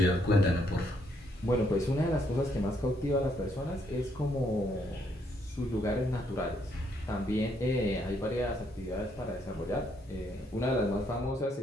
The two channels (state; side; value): normal; both; correlation 0.72